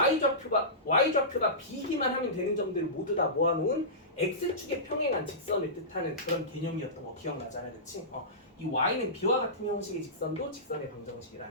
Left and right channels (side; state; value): both; normal; correlation -0.20